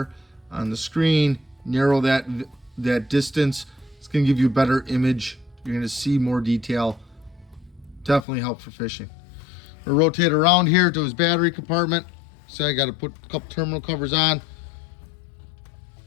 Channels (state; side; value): drops out; right; at 8.2 s